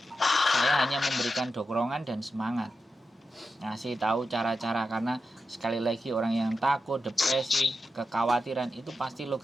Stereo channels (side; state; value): both; normal; correlation 0.90